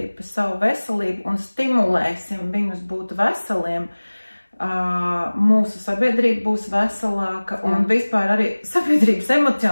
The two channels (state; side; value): inverted; both; correlation -1.00